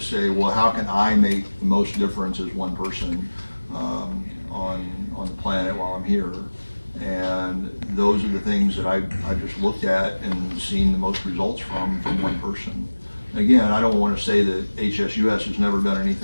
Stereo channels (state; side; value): inverted; both; correlation -1.00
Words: say, well, how can I make the most difference as one person on the planet while I'm here? And those are the things that I just looked at and seen the most results from one person. Again, I don't want to say that HSUS has never done